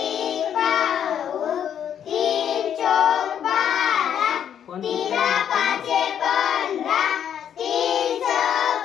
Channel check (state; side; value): quieter; right; 9.2 dB